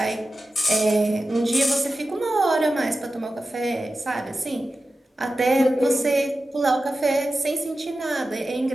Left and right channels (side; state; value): both; normal; correlation 0.93